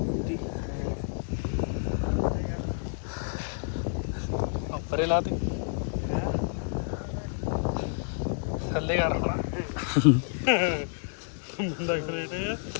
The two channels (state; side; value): silent; right; 58 dB below the other